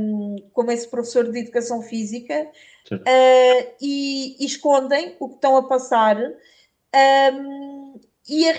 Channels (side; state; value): both; identical; correlation 1.00